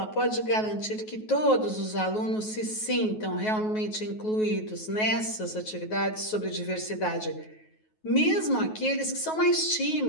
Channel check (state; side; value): late; right; 9.3 ms